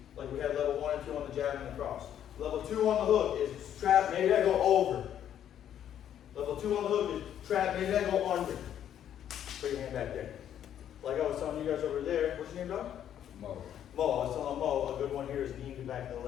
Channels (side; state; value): right; quieter; 10.1 dB